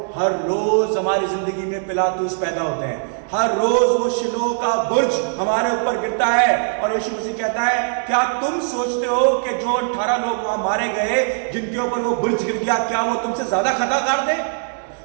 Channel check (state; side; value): silent; left; digital silence